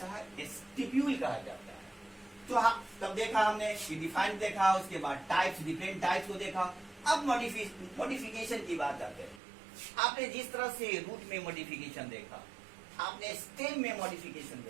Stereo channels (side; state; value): left; drops out; at 9.4 s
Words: है? स्टिप्यूल कहा जाता है। तो हाँ, तब देखा हमने डिफाइन देखा, उसके बाद टाइप्स, डिफरेंट टाइप्स को देखा। अब मॉडिफिकेशन की बात आते हैं। आपने जिस तरह से रूट में मॉडिफिकेशन देखा, आपने स्टेम में मॉडिफिकेशन